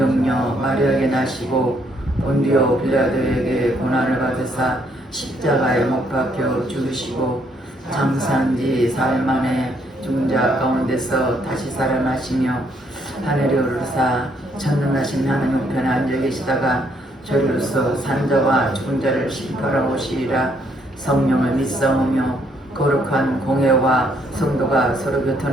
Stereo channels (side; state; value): both; normal; correlation 0.70